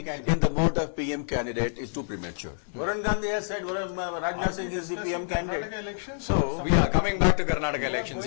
in the mode of PM candidate is too premature. Varun Gandhi has said Rajnath Singh is the PM candidate. Elections. So we are coming back to Karnataka elections.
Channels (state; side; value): silent; right; 60 dB below the other